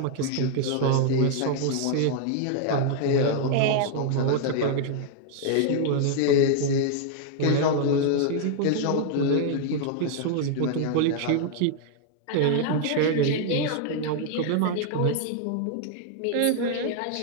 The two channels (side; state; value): both; different; correlation 0.00